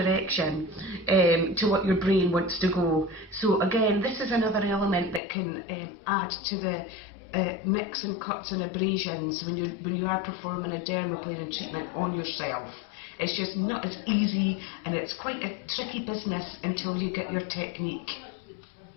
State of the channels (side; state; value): right; drops out; at 5.2 s